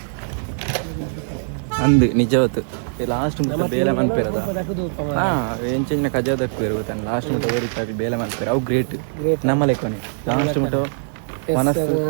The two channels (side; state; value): left; silent; 60 dB below the other